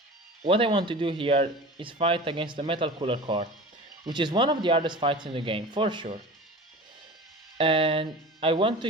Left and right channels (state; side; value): normal; both; correlation 0.36